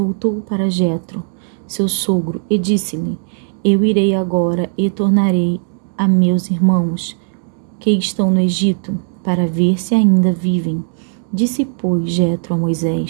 para Jetro, seu sogro, e disse-lhe: Eu irei agora e tornarei a meus irmãos que estão no Egito, para ver se ainda vivem. Disse, pois, Jetro a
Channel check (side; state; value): left; silent; digital silence